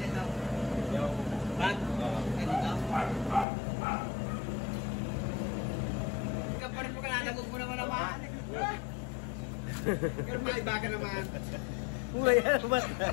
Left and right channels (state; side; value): drops out; right; at 3.5 s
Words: daw. Bag? Ganito? Ikaw pa rin mo ka nanagog mo naman naman. Pero maiba ka naman. Mulai yan, mata.